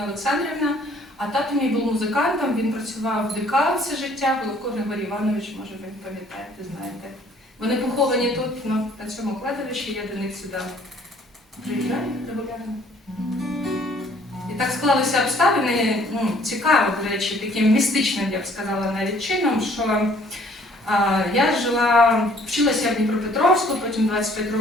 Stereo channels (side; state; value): both; normal; correlation 0.59